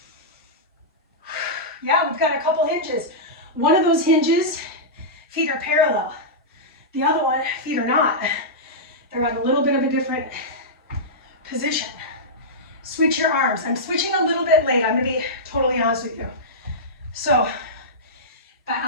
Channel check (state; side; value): normal; both; correlation -0.13